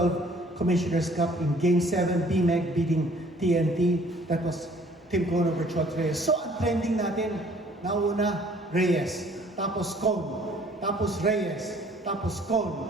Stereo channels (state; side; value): normal; both; correlation 0.56